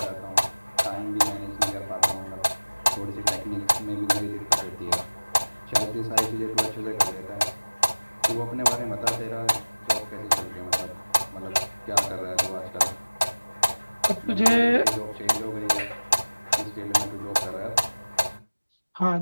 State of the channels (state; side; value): inverted; both; correlation -1.00